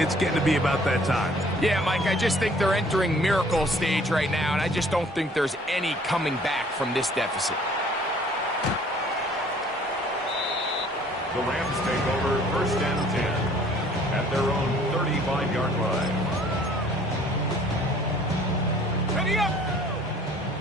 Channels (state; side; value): normal; both; correlation 0.56